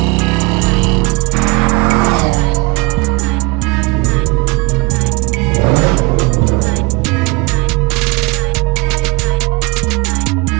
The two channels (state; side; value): quieter; left; 27.7 dB